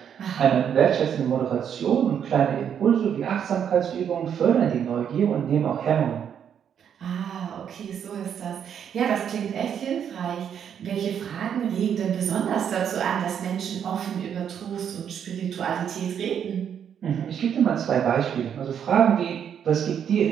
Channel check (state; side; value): quieter; left; 8.4 dB